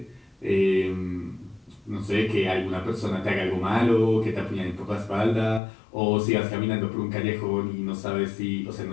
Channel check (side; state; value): right; drops out; at 5.6 s